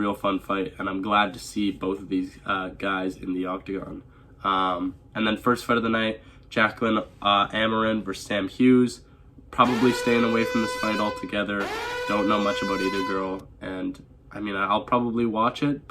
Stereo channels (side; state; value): both; identical; correlation 1.00